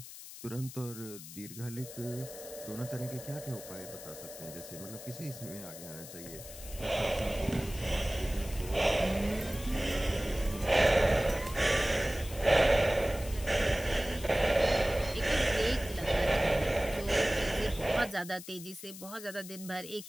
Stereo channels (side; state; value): left; noise; hiss, 14 dB below the sound